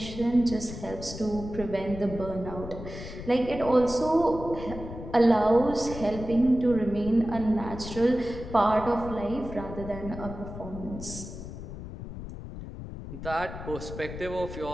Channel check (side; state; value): left; noise; rumble, 10 dB below the sound